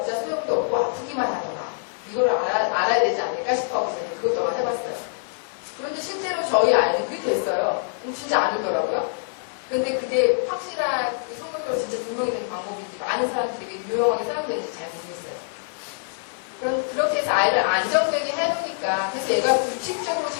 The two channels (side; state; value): right; silent; digital silence